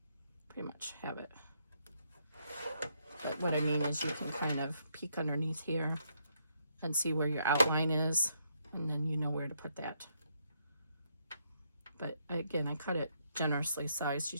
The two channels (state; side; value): inverted; both; correlation -0.75